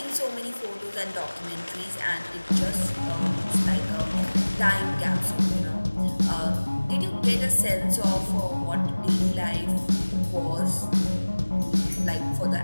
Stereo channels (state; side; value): inverted; both; correlation -1.00